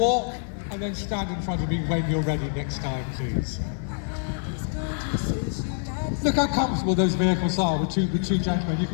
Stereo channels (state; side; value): silent; right; digital silence